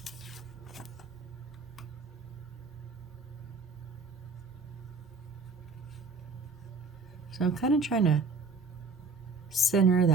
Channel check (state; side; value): quieter; left; 3.9 dB